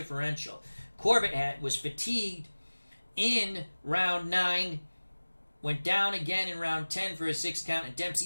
Corbett was fatigued in round 9, went down again in round 10 for a 6 count, and Dempsey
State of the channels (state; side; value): inverted; both; correlation -1.00